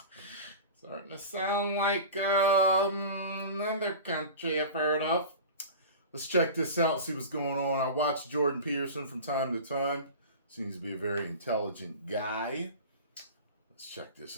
Starting to sound like another country I've heard of. Let's check this out, see what's going on. I watch Jordan Peterson from time to time. Seems to be a very intelligent guy. Let's check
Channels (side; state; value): both; inverted; correlation -0.34